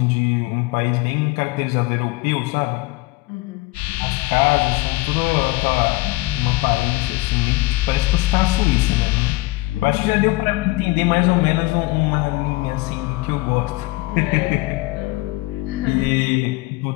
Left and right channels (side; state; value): right; quieter; 20.9 dB